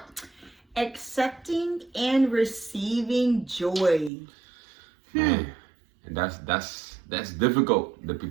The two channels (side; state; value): left; drops out; at 4.1 s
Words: Accepting and receiving joy. Man, and that's difficult